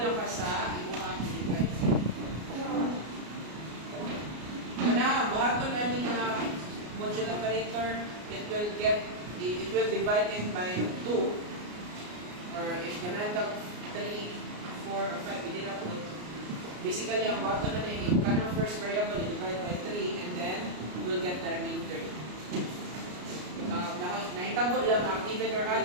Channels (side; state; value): left; late; 33 ms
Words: ka sa imuhang device. Kana, buhaton namin na modular operator, it will divide it by 2, or if ganun ka 3, 4, or 5, hindi na po. Basically, ang buhaton na yun, yung kanang first variable, divide by 3, and then we'll get the remainder. Nakitabo lang ang even or odd